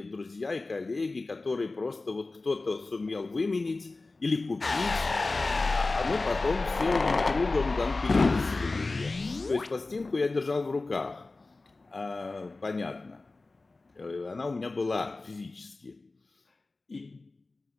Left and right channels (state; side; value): quieter; right; 3.4 dB